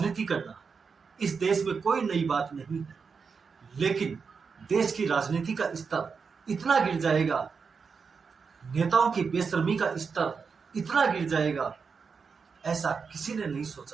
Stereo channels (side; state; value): left; quieter; 5.5 dB